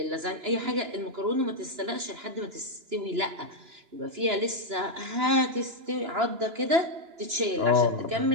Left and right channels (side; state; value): left; late; 2.9 ms